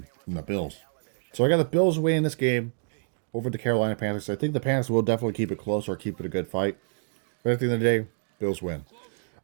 in the Bills. So I got the Bills winning this game. over the Carolina Panthers. I think the Panthers will definitely keep it close or keep it a good fight. But at the end of the day, Bills win.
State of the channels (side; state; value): left; silent; digital silence